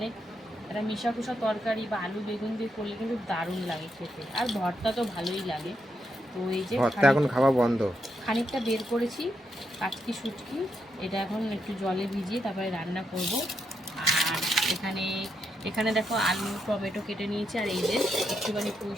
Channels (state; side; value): normal; both; correlation 0.81